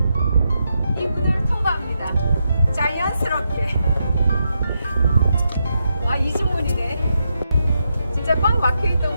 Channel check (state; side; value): inverted; both; correlation -0.84